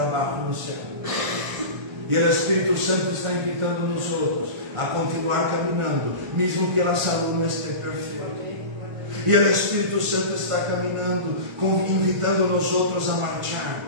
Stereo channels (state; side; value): late; left; 1.5 ms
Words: no céu. E o Espírito Santo está invitando nós outros a continuar caminhando, mesmo que a saúde não esteja perfeita. E o Espírito Santo está caminhando, invitando nós outros a marchar